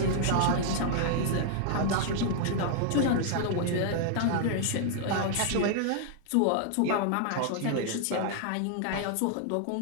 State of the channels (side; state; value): both; different; correlation -0.01